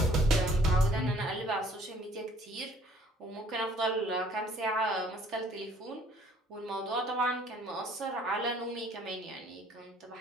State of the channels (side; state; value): both; normal; correlation 0.58